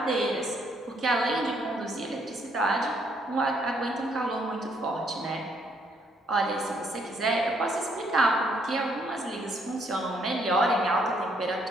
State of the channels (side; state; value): both; normal; correlation 0.70